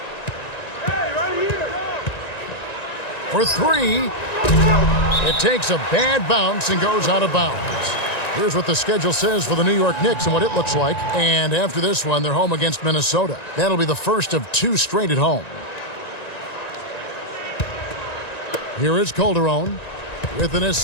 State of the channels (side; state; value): right; late; 1.9 ms